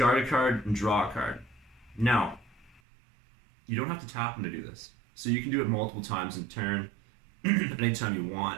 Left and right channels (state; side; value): drops out; left; at 2.8 s